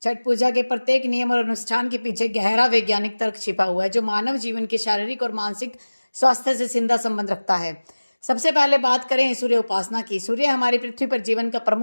छठ पूजा के प्रत्येक नियम और अनुष्ठान के पीछे गहरा वैज्ञानिक तर्क छिपा हुआ है, जो मानव जीवन के शारीरिक और मानसिक स्वास्थ्य से सीधा संबंध रखता है। सबसे पहले बात करें सूर्य उपासना की। सूर्य हमारी पृथ्वी पर जीवन का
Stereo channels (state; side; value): inverted; both; correlation -1.00